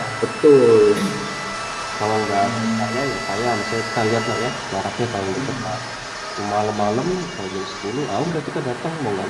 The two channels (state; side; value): identical; both; correlation 1.00